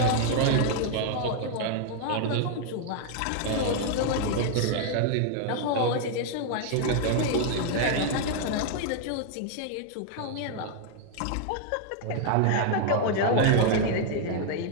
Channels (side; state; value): both; different; correlation 0.00